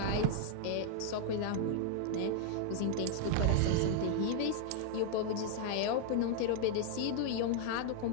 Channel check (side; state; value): both; different; correlation 0.00